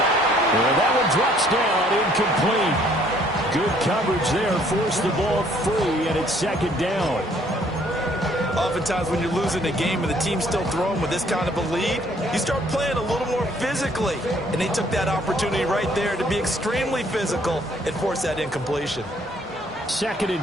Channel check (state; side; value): normal; both; correlation 0.62